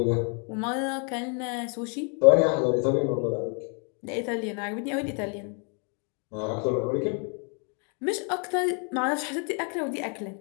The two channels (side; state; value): right; quieter; 38.2 dB